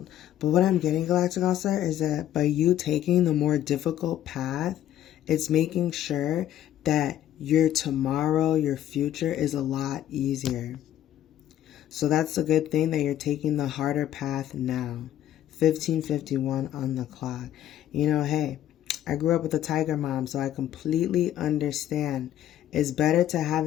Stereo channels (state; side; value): quieter; right; 11.9 dB